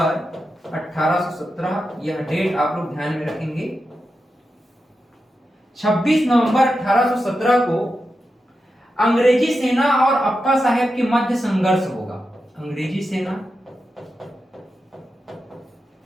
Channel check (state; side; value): normal; both; correlation 0.89